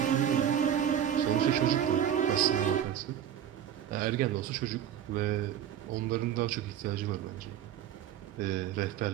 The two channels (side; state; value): left; quieter; 9.9 dB